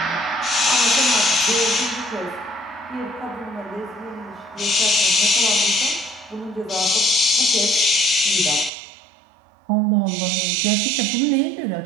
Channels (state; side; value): drops out; left; at 8.7 s